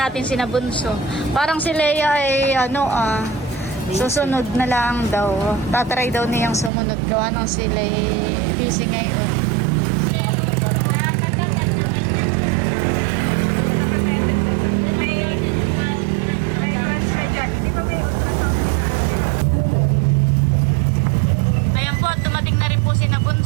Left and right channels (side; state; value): left; drops out; at 6.7 s